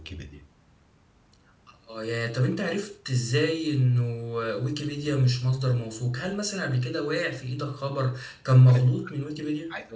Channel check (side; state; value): both; identical; correlation 1.00